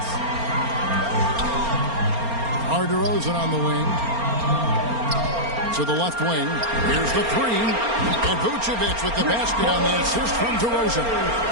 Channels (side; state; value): left; late; 4.3 ms